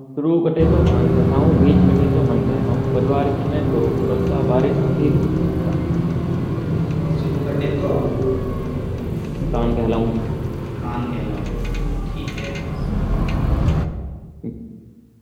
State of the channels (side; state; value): both; identical; correlation 1.00